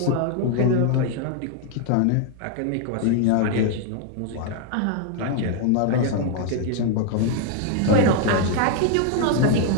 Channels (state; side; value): different; both; correlation 0.00